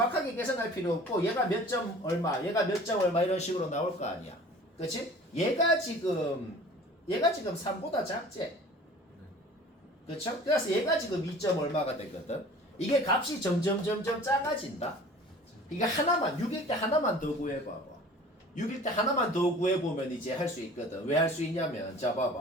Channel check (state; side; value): normal; both; correlation 0.45